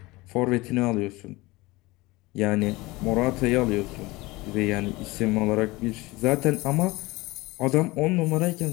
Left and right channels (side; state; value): right; quieter; 21.6 dB